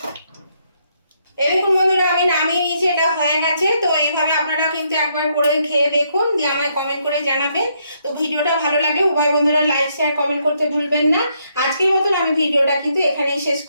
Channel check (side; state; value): both; inverted; correlation -0.74